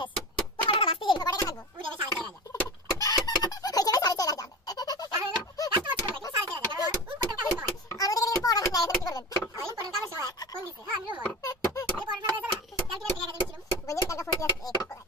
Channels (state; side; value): normal; both; correlation 0.29